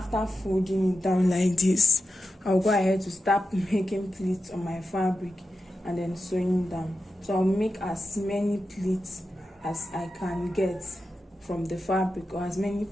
folding it down like this, I'll go ahead to start making pleats on my fabric and then sewing down. So I'll make as many pleats as I can get from the fabric, or as many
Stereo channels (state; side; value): normal; both; correlation 0.90